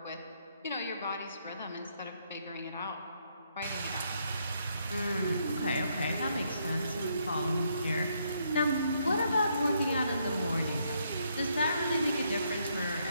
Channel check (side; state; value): both; inverted; correlation -0.74